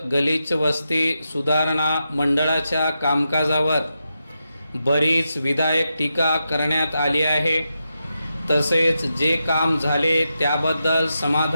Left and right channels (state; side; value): inverted; both; correlation -0.87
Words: गलिच्छ वस्ती सुधारणा मंडळाच्या कामकाजावर बरीच विधायक टीका करण्यात आली आहे। तसेच जे काम झाले त्याबद्दल